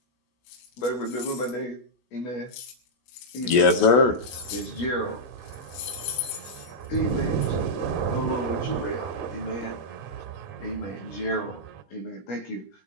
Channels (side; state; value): right; late; 16 ms